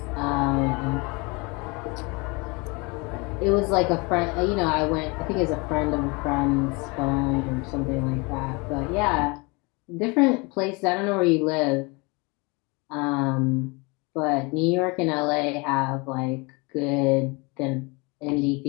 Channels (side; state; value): right; quieter; 28.1 dB